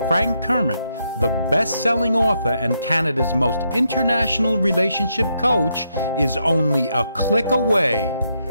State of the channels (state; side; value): inverted; both; correlation -0.79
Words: Frank Kermit, the best-selling author and Canada's most international relationship coach, is only a click away